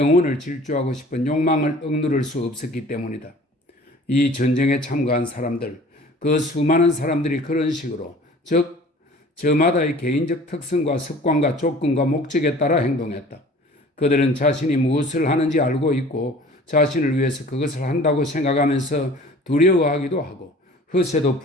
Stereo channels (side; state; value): both; normal; correlation 0.47